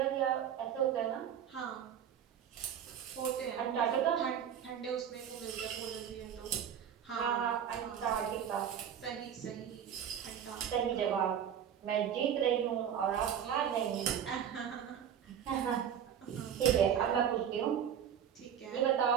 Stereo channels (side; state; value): left; quieter; 8.9 dB